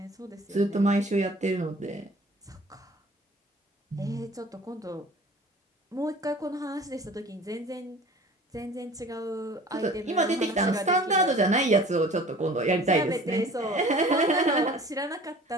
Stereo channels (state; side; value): normal; both; correlation 0.46